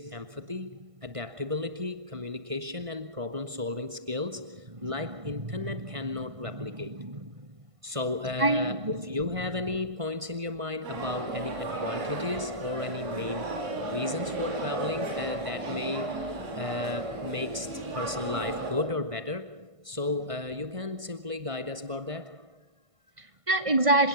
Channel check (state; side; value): late; left; 1.5 ms